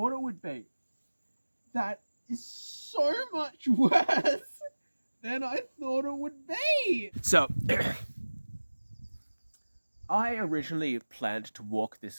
it would be. That is so much worse than I thought it would be. So, I originally planned to walk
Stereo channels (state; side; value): inverted; both; correlation -1.00